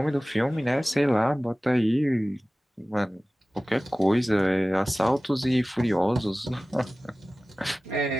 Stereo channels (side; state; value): both; normal; correlation 0.97